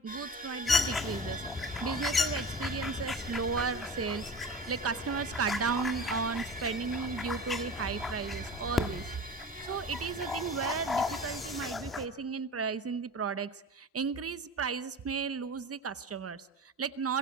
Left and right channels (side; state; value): both; normal; correlation 0.35